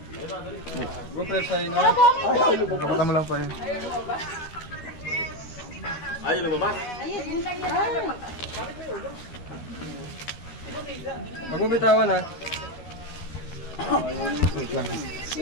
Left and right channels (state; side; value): late; right; 12 ms